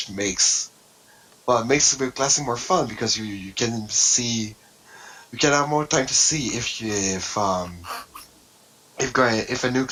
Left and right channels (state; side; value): identical; both; correlation 1.00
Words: makes the classing more fun, because you can have more time to see if a new